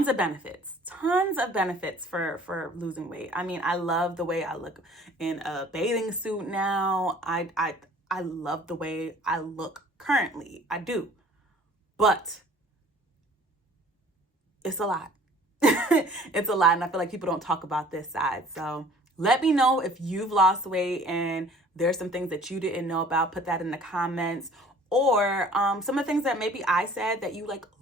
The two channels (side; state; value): both; normal; correlation 0.52